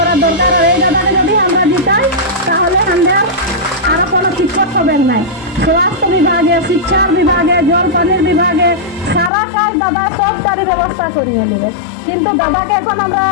দরকার। আর এই দাদাকে যদি আমরা জিতাই তাহলে আমরা আরো কোনো বিপদ হবে নাই। স্বাস্থ্য বিভাগে, শিক্ষার বিভাগে, জল পানির বিভাগে সারা কাজ দাদা সবটারই ব্যবস্থা করিয়ে নেবে। কিন্তু দাদাকে এখন আমরা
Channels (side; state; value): right; drops out; at 9.3 s